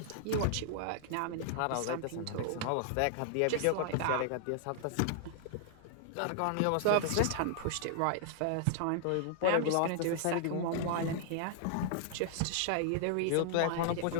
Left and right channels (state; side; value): different; both; correlation -0.01